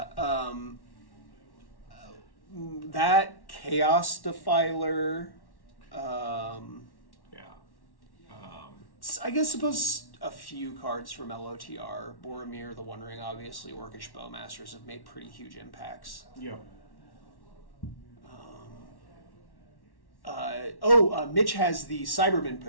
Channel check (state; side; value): late; right; 1.1 ms